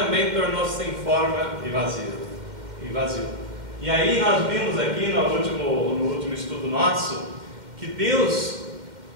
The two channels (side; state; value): left; late; 2.1 ms